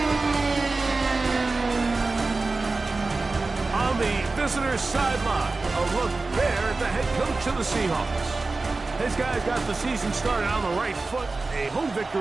On the visitor's sideline, a look there at the head coach of the Seahawks. His guys got the season started on the right foot. A home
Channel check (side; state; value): left; quieter; 3.6 dB